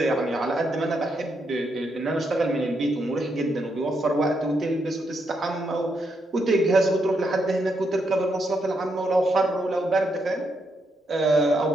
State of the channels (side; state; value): both; normal; correlation 0.79